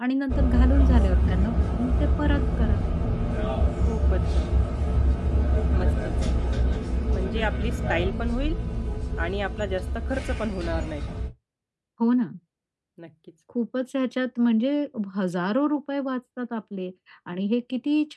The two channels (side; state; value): both; identical; correlation 1.00